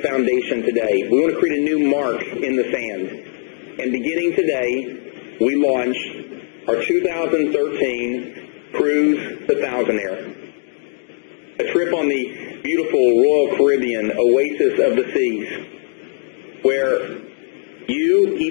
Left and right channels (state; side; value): silent; right; 66 dB below the other